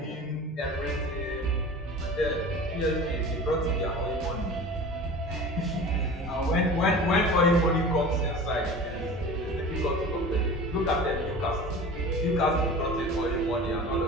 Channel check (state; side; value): normal; both; correlation 0.37